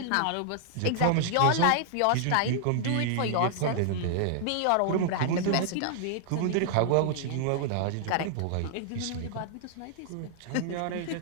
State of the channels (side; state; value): both; different; correlation -0.01